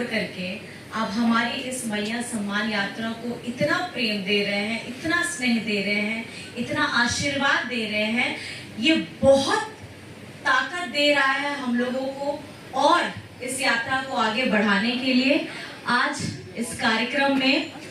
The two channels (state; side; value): identical; both; correlation 1.00